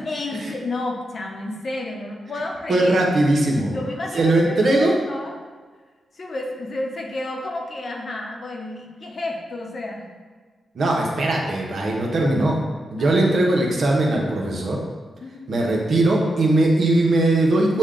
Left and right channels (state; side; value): normal; both; correlation 0.85